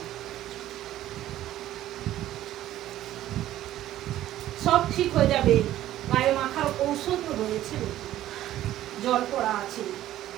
সব ঠিক হয়ে যাবে, গায়ে মাখার ঔষধ রয়েছে, জল পড়া আছে।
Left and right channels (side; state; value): left; quieter; 13.6 dB